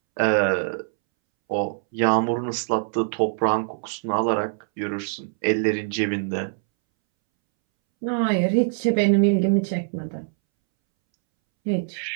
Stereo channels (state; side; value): silent; left; 63 dB below the other